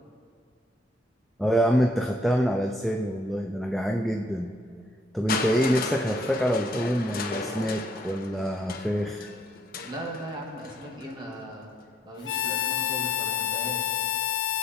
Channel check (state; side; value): normal; both; correlation 0.66